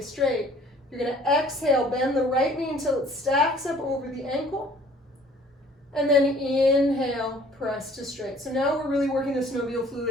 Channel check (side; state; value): both; normal; correlation 0.54